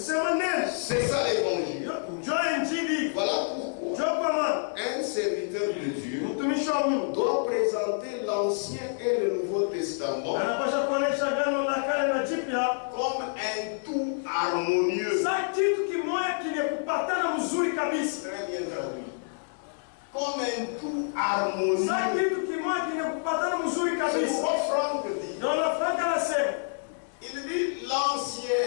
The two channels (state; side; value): silent; right; 59 dB below the other